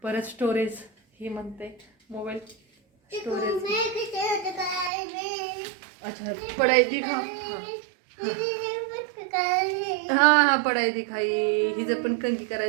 परत स्टोरेज ही म्हणते मोबाईल स्टोरेज. अच्छा, पढाई दिखा. हा पढाई दिखाई. हिचं पण कंगी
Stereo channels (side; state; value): left; drops out; at 4.9 s